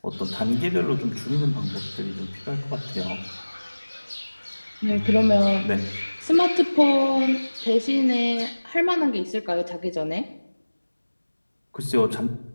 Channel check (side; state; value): both; inverted; correlation -1.00